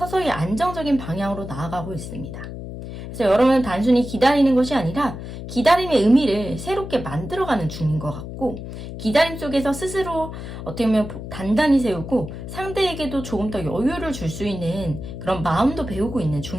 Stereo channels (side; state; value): left; noise; hum, 9 dB below the sound